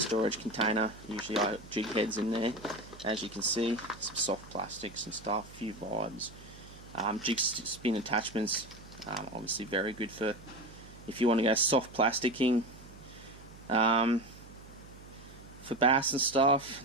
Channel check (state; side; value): noise; right; hum, 19 dB below the sound